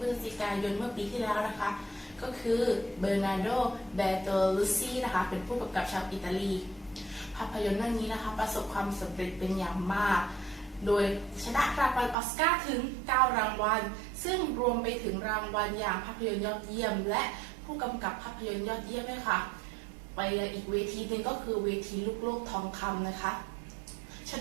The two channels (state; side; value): drops out; left; at 12.2 s